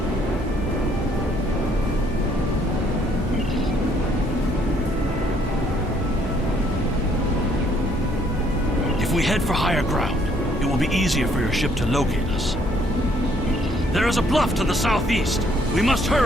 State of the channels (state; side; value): normal; both; correlation 0.65